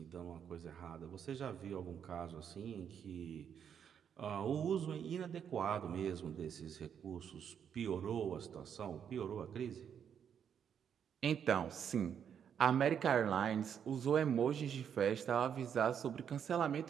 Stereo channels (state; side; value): quieter; left; 8.1 dB